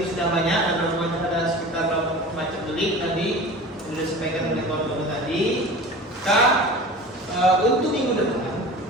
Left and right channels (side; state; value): both; normal; correlation 0.37